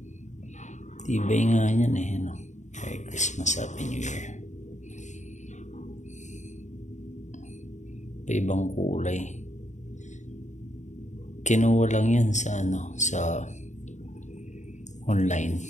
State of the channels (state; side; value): late; right; 0.34 ms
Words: tibay nga yan eh, no? Merry Christmas, Happy New Year. Iba-ibang kulay. Kinuha lang yan sa ano, sa online.